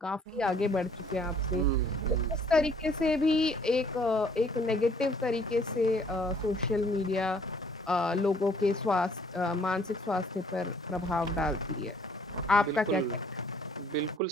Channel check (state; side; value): normal; both; correlation 0.60